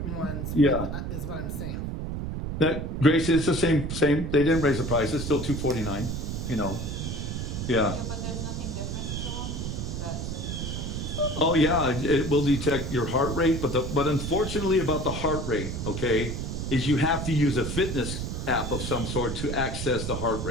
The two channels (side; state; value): right; noise; rumble, 4 dB below the sound